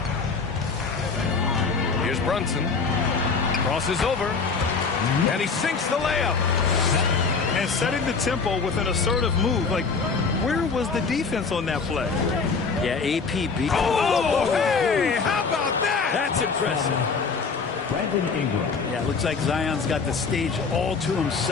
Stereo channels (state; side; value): quieter; right; 4.9 dB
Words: Here's Brunson. Crosses over. And he sinks the layup. And setting the tempo with an assertive move. Like, where was the defense on that play? Yeah, AP beat. Oh, hey, how about that? That's impressive. Brandon Ingram. Yeah, it looks like Zion's got the stage all to